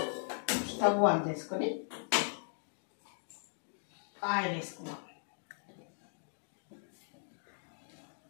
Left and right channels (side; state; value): right; silent; 52 dB below the other